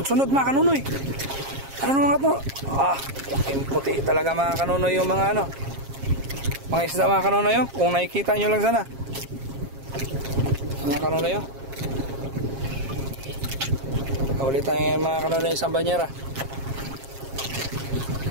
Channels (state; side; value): late; left; 7.4 ms